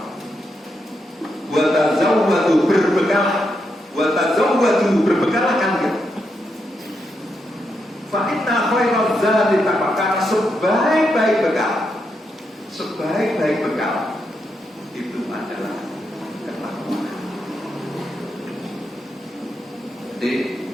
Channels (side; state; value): both; normal; correlation 0.82